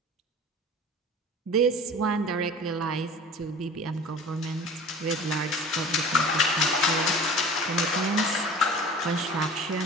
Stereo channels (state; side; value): normal; both; correlation 0.41